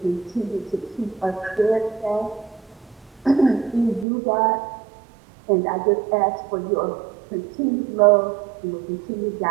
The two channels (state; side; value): drops out; left; at 4.0 s